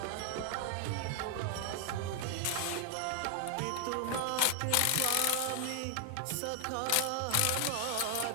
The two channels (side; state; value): both; different; correlation 0.00